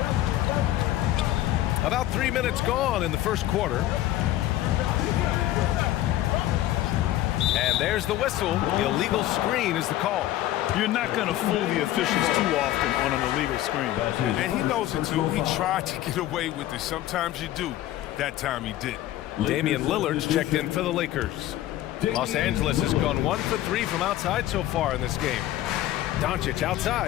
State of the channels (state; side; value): quieter; right; 14.2 dB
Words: About 3 minutes gone in the first quarter. And there's the whistle. The illegal screen is the call. You're not going to fool the officials too often on an illegal screen. And he knows it too. He tried to get away with it. Sometimes you do. That time he did. Damian Lillard's checked in for the Lakers. Los Angeles has gone 1 for 3 from outside so far in this game. Doncic